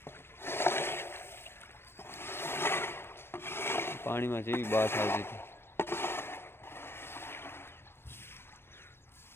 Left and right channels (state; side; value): late; right; 0.12 ms